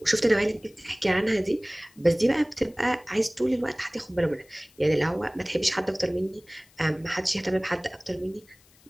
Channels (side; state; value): left; noise; hiss, 29 dB below the sound